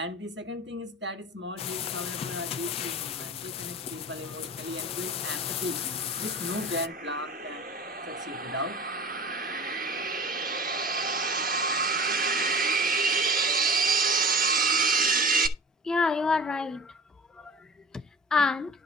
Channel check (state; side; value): normal; both; correlation 0.38